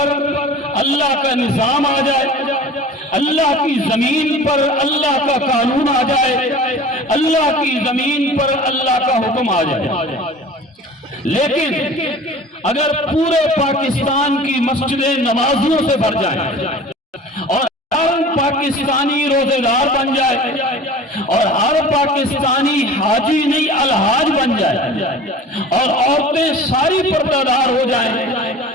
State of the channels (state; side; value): normal; both; correlation 0.41